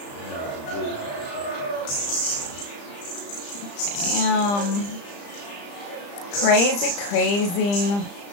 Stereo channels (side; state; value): right; late; 35 ms